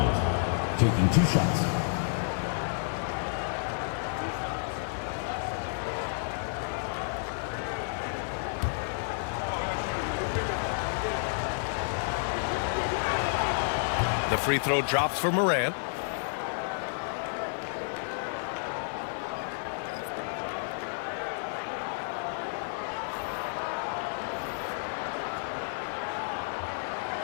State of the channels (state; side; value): silent; right; 57 dB below the other